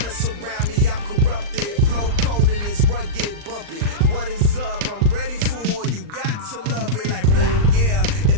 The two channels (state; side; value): late; left; 39 ms